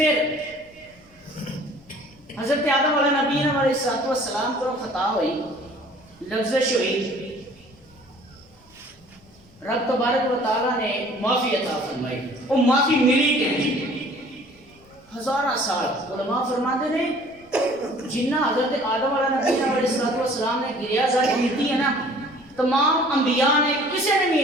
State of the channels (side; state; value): left; noise; rumble, 29 dB below the sound